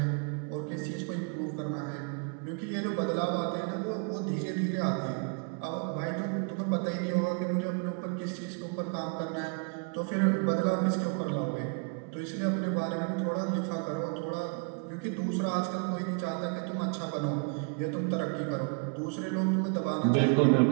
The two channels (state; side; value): quieter; left; 38.3 dB